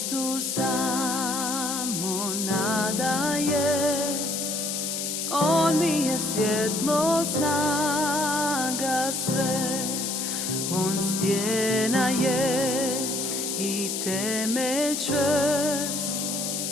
samo nadaje, On mi je svjetlo, snaga sve, On stjena je i temelj čvrst,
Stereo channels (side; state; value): left; noise; hiss, 2 dB below the sound